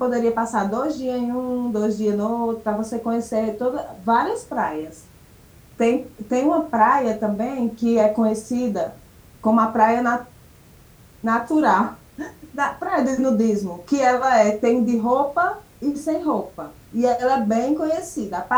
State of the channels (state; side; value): identical; both; correlation 1.00